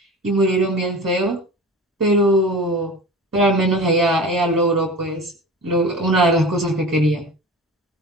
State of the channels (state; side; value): normal; both; correlation 0.35